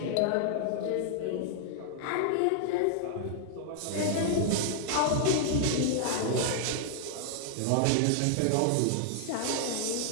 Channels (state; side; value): different; both; correlation -0.01